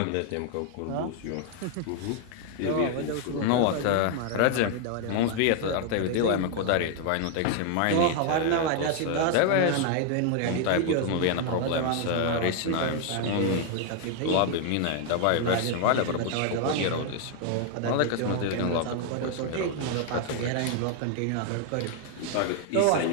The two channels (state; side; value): different; both; correlation 0.00